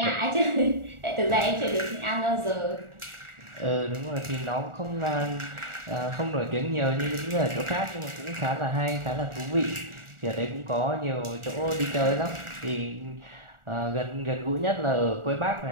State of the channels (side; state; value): left; late; 1.4 ms